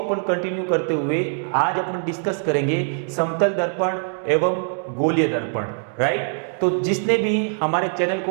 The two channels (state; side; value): silent; left; 61 dB below the other